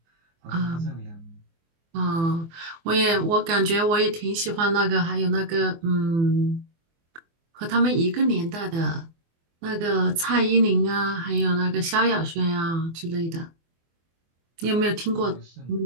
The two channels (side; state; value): left; late; 24 ms